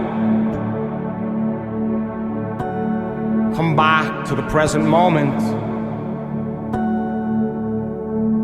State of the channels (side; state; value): both; identical; correlation 1.00